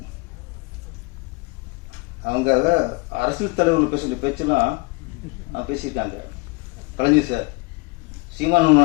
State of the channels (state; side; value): quieter; right; 26.7 dB